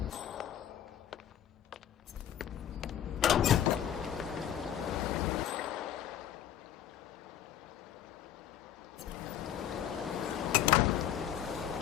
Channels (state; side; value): quieter; right; 10.6 dB